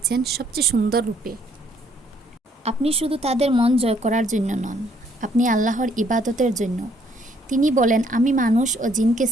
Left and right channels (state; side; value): normal; both; correlation 0.66